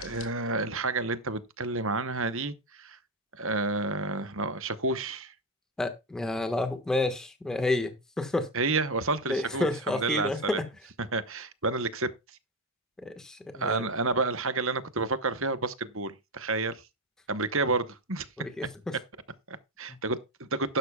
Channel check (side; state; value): both; normal; correlation 0.12